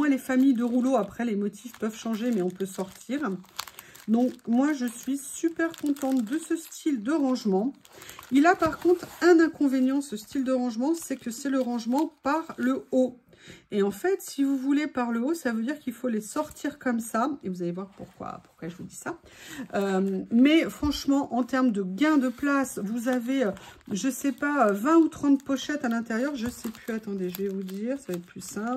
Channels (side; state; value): both; identical; correlation 1.00